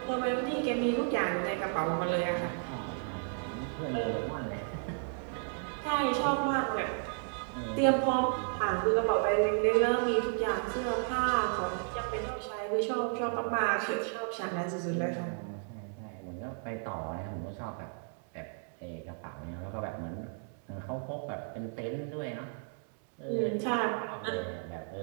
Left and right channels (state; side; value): silent; left; 56 dB below the other